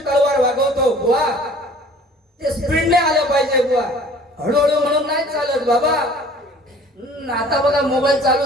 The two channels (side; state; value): both; normal; correlation 0.50